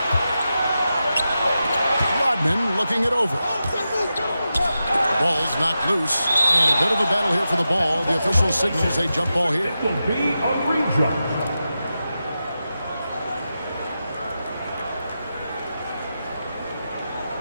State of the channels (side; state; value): both; inverted; correlation -0.90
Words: Rodman looking it over. Ball's knocked loose. And a bit of a battle here for the ball. The official signals a jump ball here. It will be a re-jump.